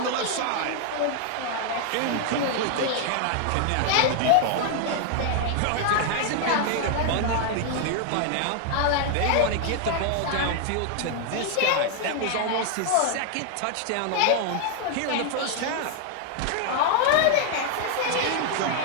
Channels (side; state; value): both; different; correlation 0.00